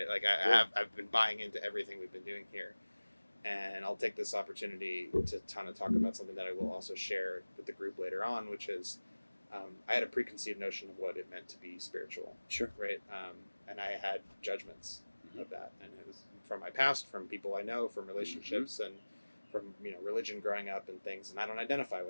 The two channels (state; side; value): inverted; both; correlation -1.00